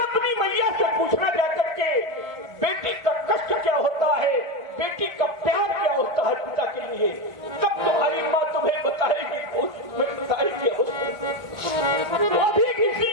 अपनी मैया से पूछना जाकर के बेटी का कष्ट क्या होता है, बेटी का प्यार क्या होता है पिता के लिए। कब तुम्हारी माँ तुम्हें बताएगी, तुम्हें बताएगी। वो भी किसी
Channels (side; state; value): left; late; 1.5 ms